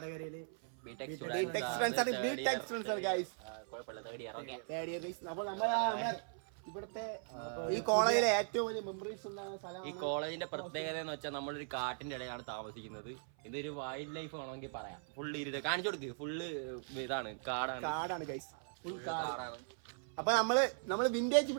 അപ്പോൾ ഇവിടുത്തെ ഈ കോളേജിലെ ഏറ്റവും വലിയ മെമ്മറീസ് ഉണ്ടാകുന്ന സ്ഥലം. ഈ കോളേജിന്റെ പ്രത്യേകത എന്ന് വെച്ചാൽ നമ്മളൊരു കാട്ടിന്റെ ഇടയിലാണ് താമസിക്കുന്നത്. ഇതൊരു വൈൽഡ് ലൈഫ് വേണമെങ്കിൽ പറയാം. ഫുള്ള് ഇരുട്ട് കാണിച്ചു കൊടുക്ക്. ഫുള്ള് ഇതാണ്, കാടാണ് ഗൈസ്, ഫുൾ കാടാണ്. അപ്പൊ നമ്മള് വിന്റേജ്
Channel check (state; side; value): silent; left; 52 dB below the other